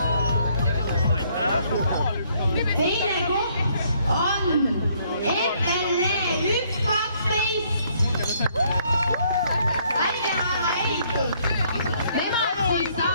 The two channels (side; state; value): both; inverted; correlation -0.67